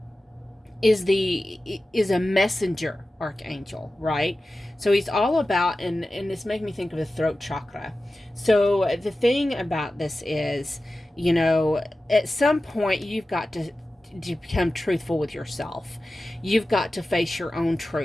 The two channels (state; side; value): normal; both; correlation 0.95